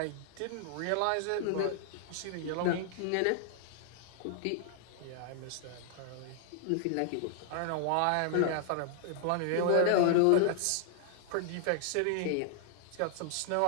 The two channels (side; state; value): both; different; correlation -0.01